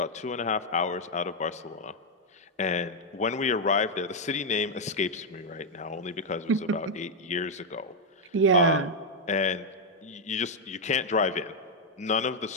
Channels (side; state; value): both; normal; correlation 0.00